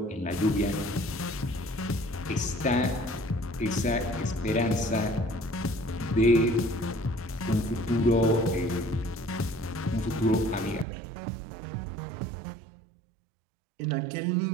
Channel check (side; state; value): left; drops out; at 10.9 s